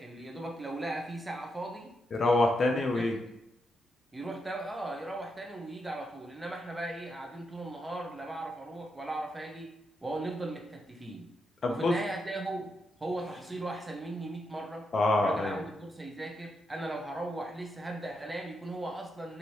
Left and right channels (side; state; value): both; normal; correlation 0.83